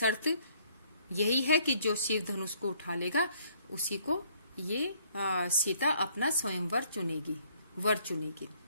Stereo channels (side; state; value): both; inverted; correlation -0.64